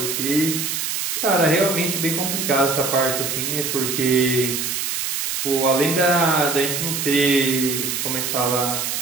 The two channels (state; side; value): noise; right; hiss, 2 dB below the sound